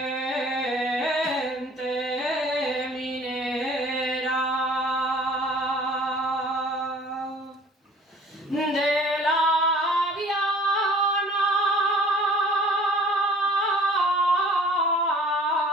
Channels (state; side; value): normal; both; correlation 0.51